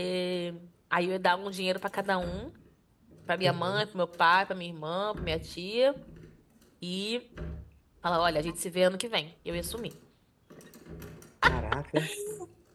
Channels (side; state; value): both; identical; correlation 1.00